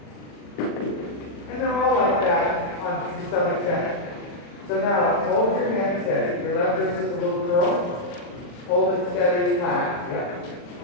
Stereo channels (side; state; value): right; late; 40 ms